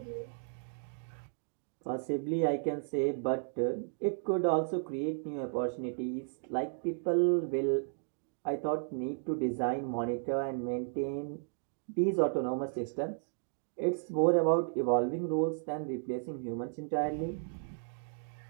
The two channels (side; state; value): left; silent; digital silence